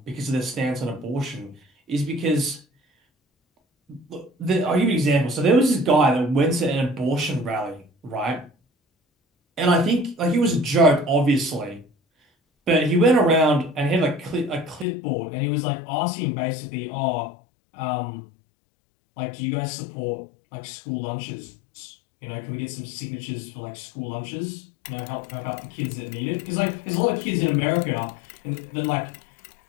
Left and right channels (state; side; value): drops out; right; at 14.9 s